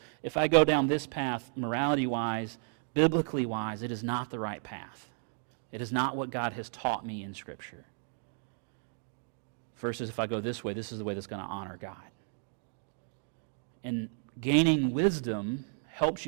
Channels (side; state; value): left; silent; 56 dB below the other